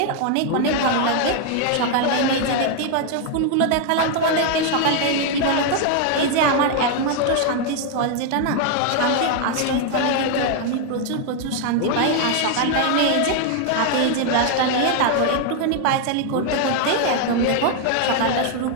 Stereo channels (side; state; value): both; different; correlation 0.00